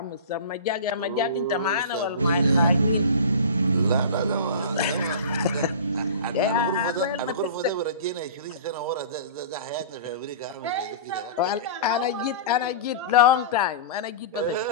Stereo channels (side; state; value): both; inverted; correlation -0.34